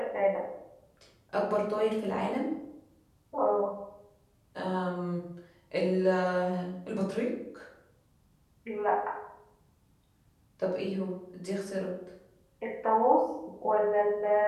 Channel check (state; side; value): identical; both; correlation 1.00